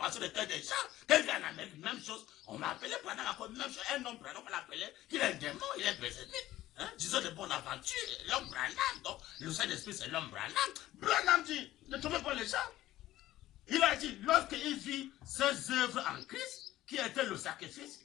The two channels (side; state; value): right; quieter; 15.0 dB